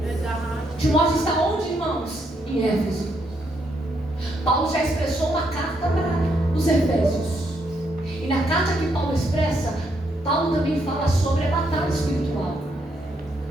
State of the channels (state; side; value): normal; both; correlation 0.76